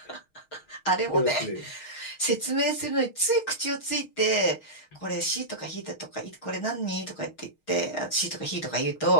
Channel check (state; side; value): late; right; 6.4 ms